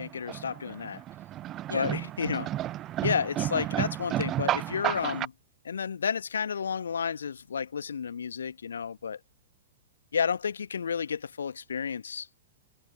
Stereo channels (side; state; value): both; inverted; correlation -0.42